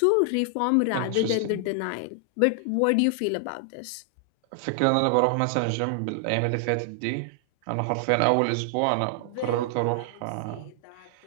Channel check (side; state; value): both; different; correlation 0.00